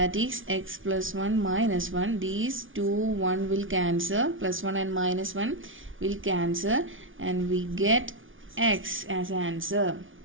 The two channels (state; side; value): late; left; 0.57 ms